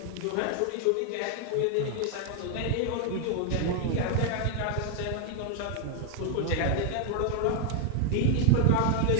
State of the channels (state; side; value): different; both; correlation 0.00